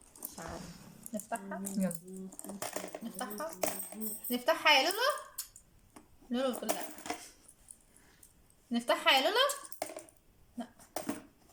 مش عارف نفتحها. يلا. نفتحها نفتحها يا لولو. لولو بتقول لا. نفتحها يا لولو. لا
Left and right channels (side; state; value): both; identical; correlation 1.00